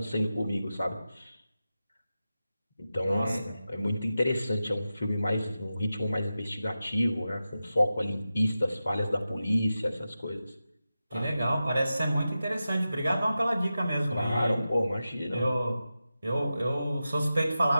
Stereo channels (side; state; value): both; inverted; correlation -0.92